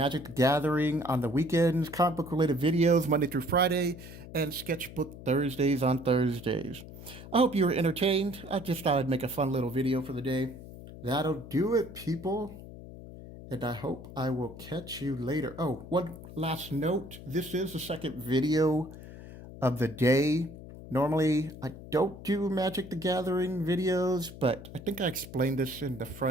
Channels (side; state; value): left; noise; hum, 14 dB below the sound